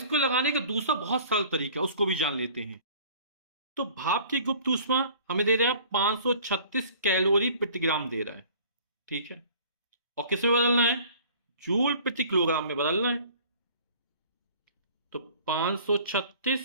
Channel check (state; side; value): inverted; both; correlation -0.49